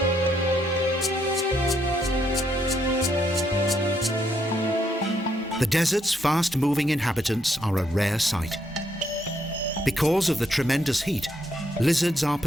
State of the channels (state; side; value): normal; both; correlation 0.75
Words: The desert's fast-moving inhabitants are a rare sight. Because of the tremendous heat, lizards are